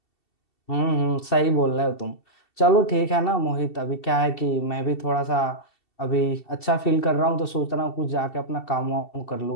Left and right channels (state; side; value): late; right; 2.7 ms